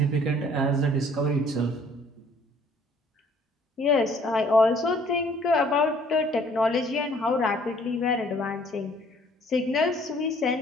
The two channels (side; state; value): both; normal; correlation 0.58